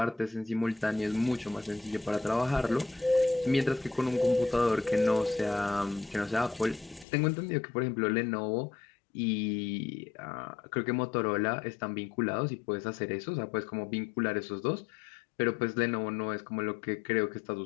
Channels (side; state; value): right; drops out; at 7.1 s